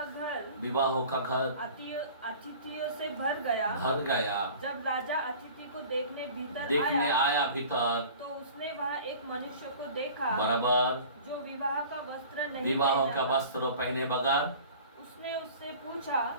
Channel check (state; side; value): inverted; both; correlation -0.43